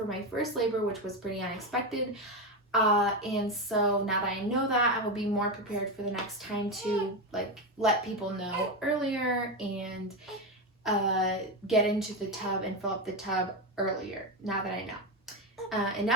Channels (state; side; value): normal; both; correlation 0.12